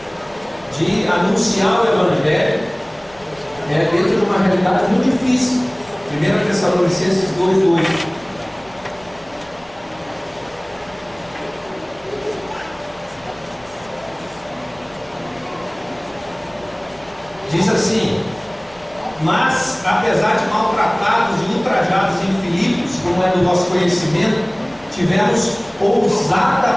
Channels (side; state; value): left; noise; rumble, 27 dB below the sound